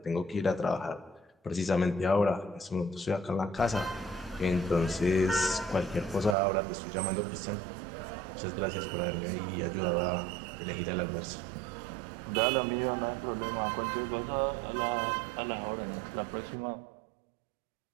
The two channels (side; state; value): left; drops out; at 6.4 s